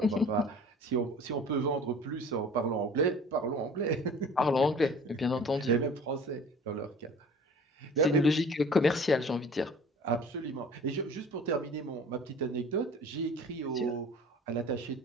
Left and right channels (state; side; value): normal; both; correlation 0.45